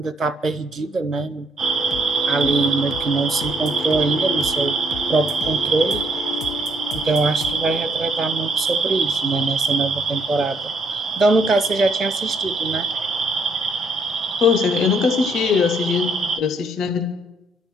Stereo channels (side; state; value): both; normal; correlation 0.70